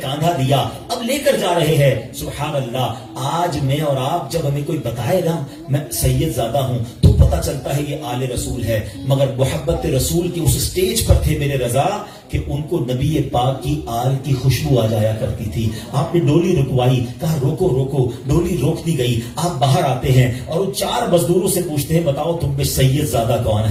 کاندھا دیا, اب لے کر جا رہے ہیں. سبحان اللہ, آج میں اور آپ جب ہمیں کوئی بتائے نا میں سید زادہ ہوں تو پتہ چلتا ہے یہ آل رسول ہے. مگر محبت رسول کی اس سٹیج پر تھے میرے رضا کہ ان کو نبی پاک کی آل کی خوشبو آ جایا کرتی تھی. آپ نے ڈولی رکوائی, کہا روکو روکو, ڈولی روک دی گئی. آپ باہر آتے ہیں اور ان 4 مزدوروں سے پوچھتے ہیں بتاؤ تم میں سید زادہ کون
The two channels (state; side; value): identical; both; correlation 1.00